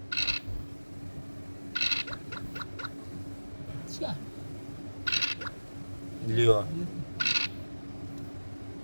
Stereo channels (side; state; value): both; inverted; correlation -1.00